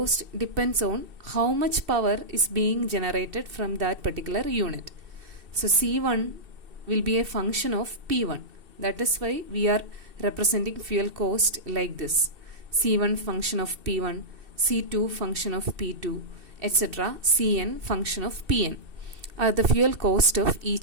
depends on how much power is being generated from that particular unit. So C1 will be a function of P1. That is why we are representing fuel cost like this. C1 function of P1, C2 function of P2, etc. Cn function of Pn are the fuel cost of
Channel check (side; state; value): left; late; 2.7 ms